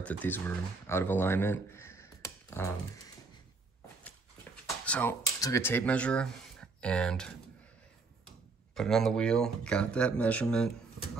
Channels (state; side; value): quieter; left; 4.0 dB